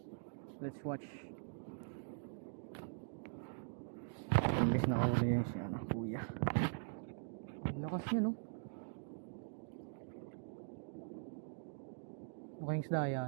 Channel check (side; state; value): left; silent; digital silence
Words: Let's watch. Imbes na ako yun siya, kuya. Lakas niya, no? Mukhang isda